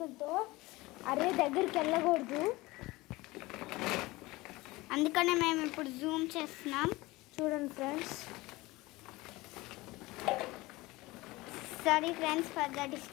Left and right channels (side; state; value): right; quieter; 20.7 dB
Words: అరే దగ్గరికి వెళ్ళకూడదు, అందుకనే మేము ఇప్పుడు జూమ్ చేస్తున్నాం. చూడండి friends. Sorry friends for the